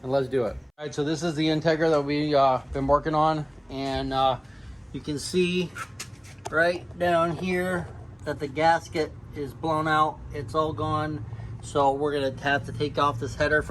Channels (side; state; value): both; identical; correlation 1.00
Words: and let's do it. All right, so this is the Integra that we've been working on. And you can see right down here that the gasket is blown out. It's all gone. So we're gonna have to take off this header